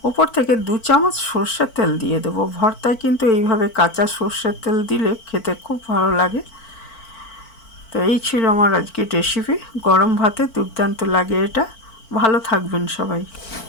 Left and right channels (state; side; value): late; right; 4.5 ms